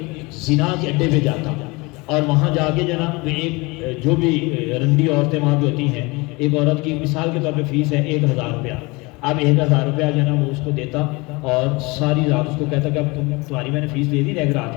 زنا کے اڈے پہ جاتا، اور وہاں جا کے جو ہے نا ایک جو بھی رنڈی عورتیں وہاں پہ ہوتی ہیں، ایک عورت کی مثال کے طور پہ فیس ہے 1000 روپیہ، اب 1000 روپیہ جو ہے نا وہ اس کو دیتا اور ساری رات اس کو کہتا کہ اب تمہاری میں نے فیس دے دی ایک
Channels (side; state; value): right; quieter; 25.3 dB